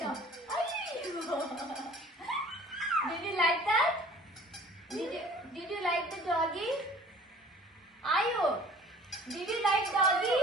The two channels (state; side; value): normal; both; correlation 0.49